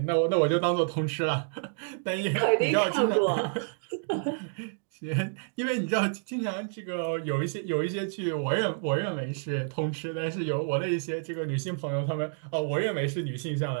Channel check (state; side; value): silent; left; digital silence